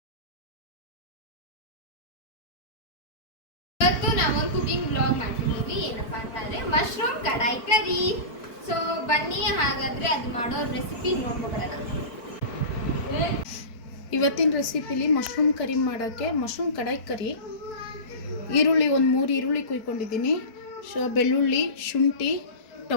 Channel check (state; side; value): late; right; 4.6 ms